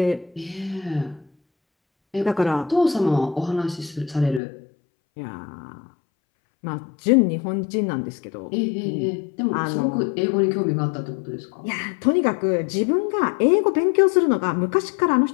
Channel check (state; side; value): drops out; right; at 4.4 s